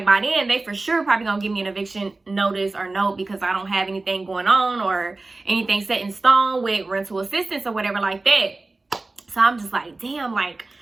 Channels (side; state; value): left; quieter; 3.3 dB